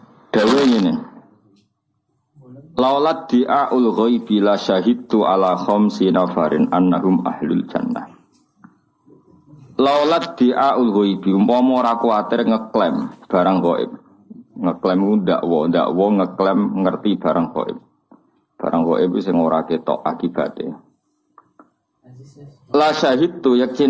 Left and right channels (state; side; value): identical; both; correlation 1.00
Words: Dawuh ngene. Laulat di'aul ghaibi la syahidtu ala khamsi nafarin annahum ahlul jannah. Laulat di'aul ghaibi umpama ora kuwatir ngeklaim barang gaib. Ngeklaim ndakwa ngeklaim ngerti barang gaib. Barang gaib sing ora ketok akibate. La syahidtu